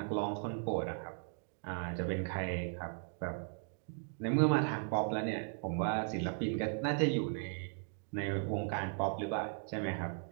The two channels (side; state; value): left; silent; 53 dB below the other